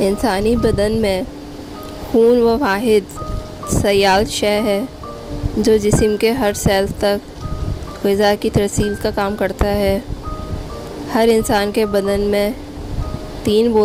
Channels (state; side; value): identical; both; correlation 1.00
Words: بدن میں خون وہ واحد سیال شے ہے جو جسم کے ہر سیل تک غذا کی ترسیل کا کام کرتا ہے۔ ہر انسان کے بدن میں 3